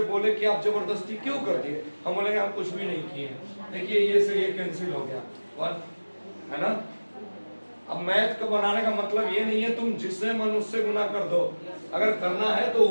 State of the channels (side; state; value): both; inverted; correlation -1.00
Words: बोले कि आप जबरदस्ती क्यों कर दिए, हम बोलेंगे हम कुछ भी नहीं किए। देखिए ये से ये कैंसिल हो गया 1, है ना। अब मैथ का बनाने का मतलब ये नहीं है तुम जिससे मन उससे गुना कर दो। अगर करना है तो